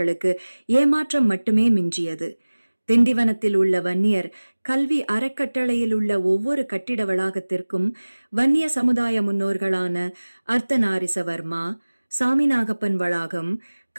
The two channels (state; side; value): inverted; both; correlation -1.00